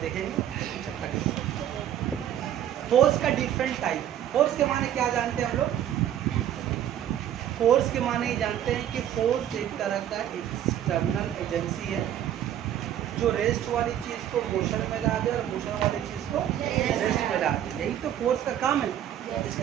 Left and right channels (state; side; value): quieter; left; 10.9 dB